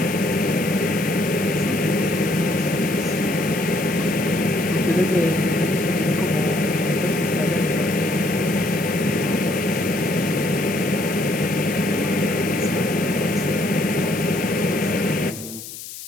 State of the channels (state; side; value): noise; left; hiss, 12 dB below the sound